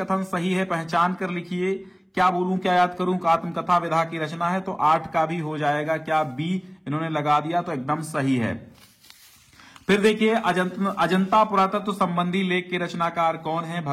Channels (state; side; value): identical; both; correlation 1.00